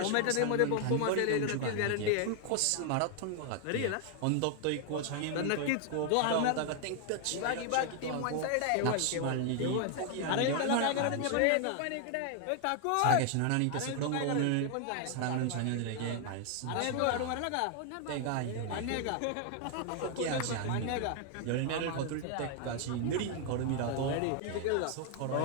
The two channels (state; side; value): different; both; correlation 0.00